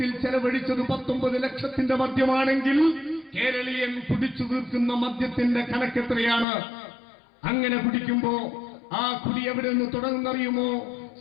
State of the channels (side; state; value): right; drops out; at 6.5 s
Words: ചെലവഴിച്ചത് 19 ലക്ഷത്തിന്റെ മദ്യമാണെങ്കിൽ കേരളീയൻ കുടിച്ചു തീർക്കുന്ന മദ്യത്തിന്റെ കണക്കെത്രയാണ്? അങ്ങനെ കുടിക്കുമ്പോ ആ കുടി എവിടെ നിന്ന് തുടങ്ങുന്നറിയുമോ?